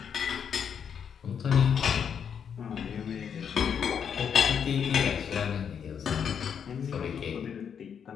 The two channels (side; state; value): right; quieter; 7.6 dB